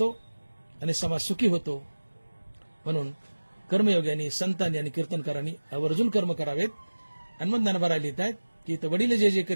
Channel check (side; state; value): both; inverted; correlation -1.00